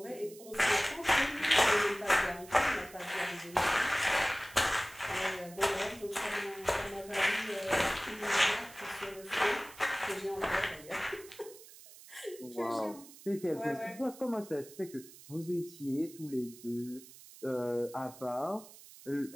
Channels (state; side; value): noise; right; hiss, 19 dB below the sound